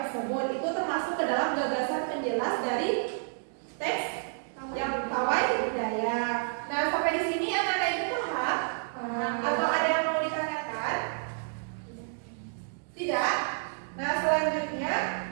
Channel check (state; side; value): silent; left; digital silence